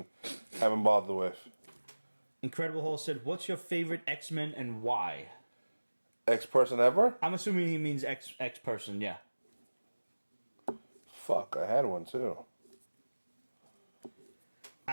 haven't bothered with. Incredible Hulk said, "What's your favorite X-Men and why?" X person ever? I'm assuming he means X person. Yeah. Fuck, I had one too.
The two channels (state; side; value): inverted; both; correlation -1.00